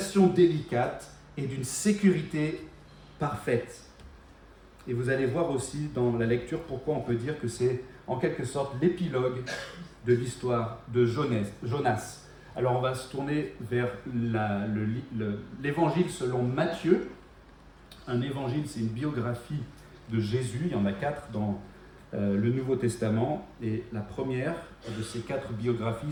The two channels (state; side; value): identical; both; correlation 1.00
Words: délicate et d'une sécurité parfaite. Et vous allez voir aussi dans la lecture pourquoi on peut dire que c'est en quelque sorte l'épilogue de l'histoire de Jonas. Alors on va se tourner vers l'évangile selon Matthieu. Un évangile, c'est une biographie de Jésus. Il y en a 4 dans le Nouveau Testament. Et la première de ces 4